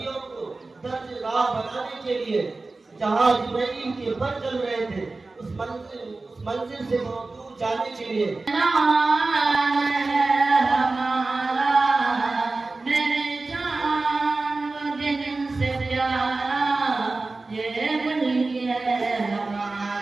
को दर्ज राह बनाने के लिए जहाँ जिब्राइल के पर चल रहे थे उस मंजिल से बहुत दूर जाने के लिए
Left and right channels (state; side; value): quieter; left; 3.5 dB